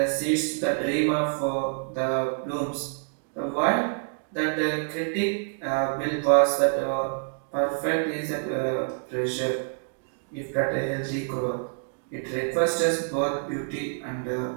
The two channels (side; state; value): left; silent; 60 dB below the other